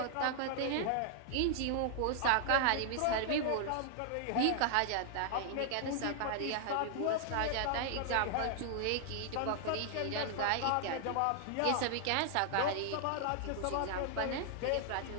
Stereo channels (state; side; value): different; both; correlation 0.00